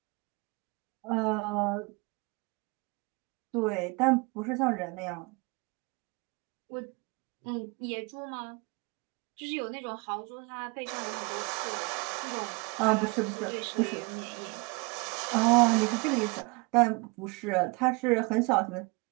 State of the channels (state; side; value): quieter; left; 28.5 dB